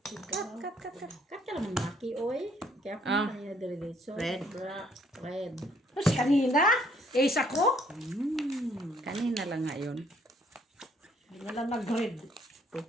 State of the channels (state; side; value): normal; both; correlation 0.65